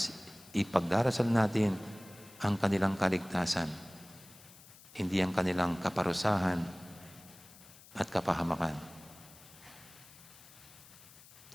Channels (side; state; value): left; noise; hiss, 21 dB below the sound